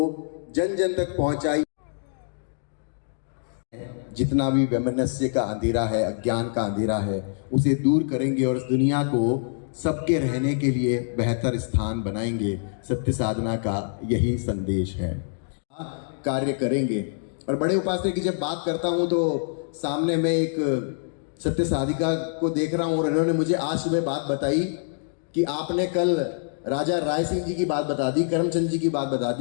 जन जन तक पहुंचाइए। जितना भी वैमनस्य का अंधेरा है, अज्ञान का अंधेरा है, उसे दूर करेंगे और इस दुनिया को सबके रहने के लिए बेहतर स्थान बनाएंगे। सत्य साधना का यही संदेश है। कार्य करेंगे। और बड़े उपासक की जब बात करता हूं तो सामने मैं एक सत्य साधिका को देख रहा हूं और इन्होंने मुझे आज सुबह बात बताई कि आपने कल राजा राय सिंह जी की बात बता दी, करमचंद जी की बात बता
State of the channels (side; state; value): right; silent; digital silence